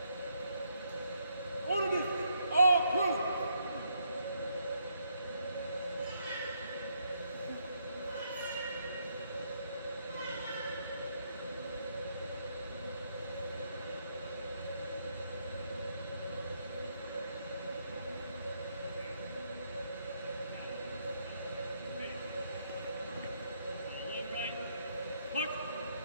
Order, all present.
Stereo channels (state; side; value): inverted; both; correlation -0.75